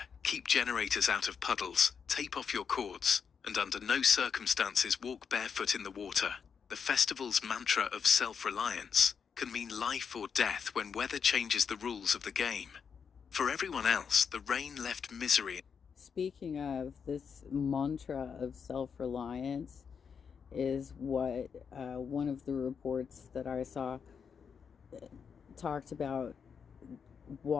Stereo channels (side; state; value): right; quieter; 6.5 dB